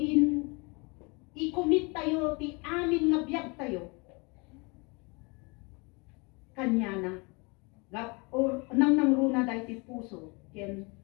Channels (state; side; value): quieter; right; 29.4 dB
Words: i-commit tayo, ti amin nga biyag tayo. Kanya na. Or nang runa dahi ti puso, ken